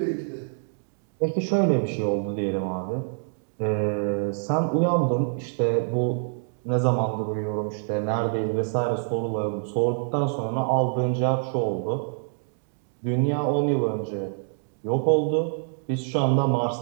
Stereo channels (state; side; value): silent; left; digital silence